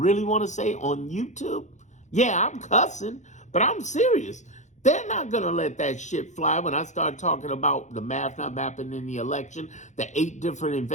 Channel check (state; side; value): late; right; 0.35 ms